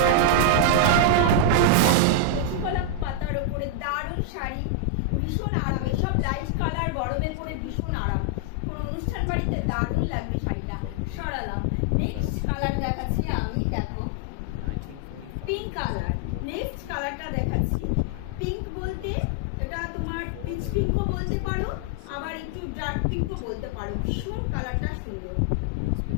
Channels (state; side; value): different; both; correlation 0.00